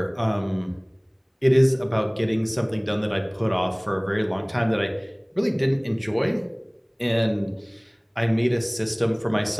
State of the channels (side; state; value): both; identical; correlation 1.00